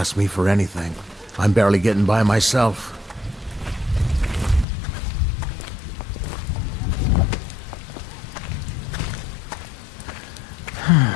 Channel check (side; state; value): right; drops out; at 4.7 s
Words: me for anything. I'm barely getting by myself.